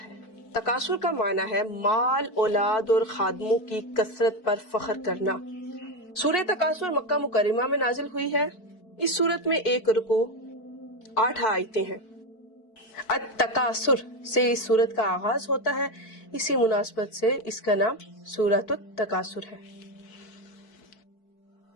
تکاثر کا معنی ہے مال، اولاد اور خادموں کی کثرت پر فخر کرنا۔ سورہ تکاثر مکہ مکرمہ میں نازل ہوئی ہے۔ اس سورت میں 1 رکوع 8 آیتیں ہیں۔ التکاثر سے اس سورت کا آغاز ہوتا ہے، اسی مناسبت سے اس کا نام سورۃ التکاثر ہے۔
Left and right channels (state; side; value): late; right; 4.6 ms